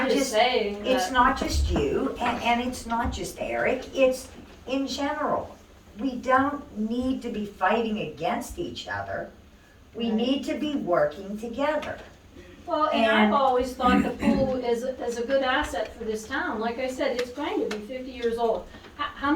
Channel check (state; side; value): identical; both; correlation 1.00